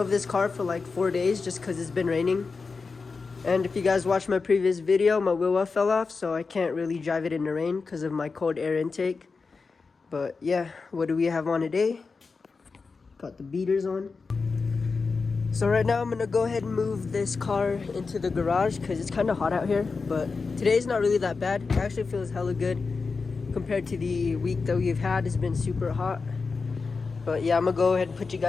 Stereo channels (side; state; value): right; quieter; 4.5 dB